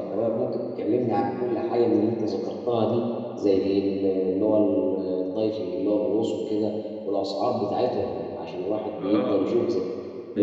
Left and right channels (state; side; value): identical; both; correlation 1.00